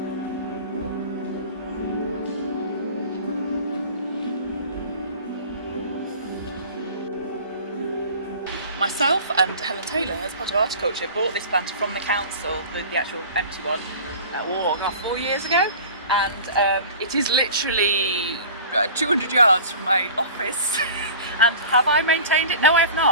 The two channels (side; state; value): both; inverted; correlation -0.41